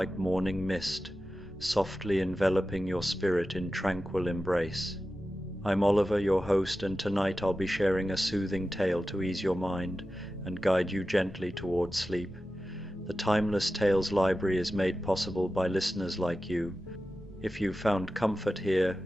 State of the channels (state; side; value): normal; both; correlation 0.93